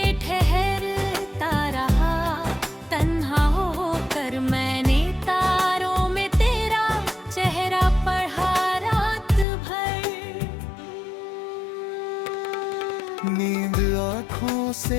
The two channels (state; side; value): drops out; right; at 9.5 s